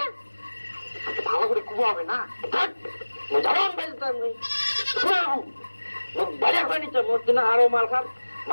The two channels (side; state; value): both; inverted; correlation -1.00